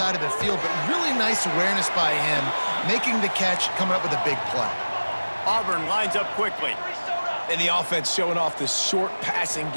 of the field, but really nice awareness by him, making the catch, coming up with a big play. Auburn lines up quickly. And the offense showing off the short passing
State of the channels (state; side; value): inverted; both; correlation -1.00